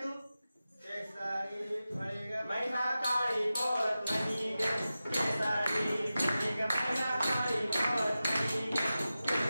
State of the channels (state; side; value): inverted; both; correlation -0.94